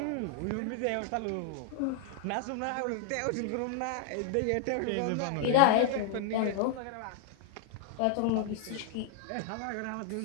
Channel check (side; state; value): both; different; correlation 0.00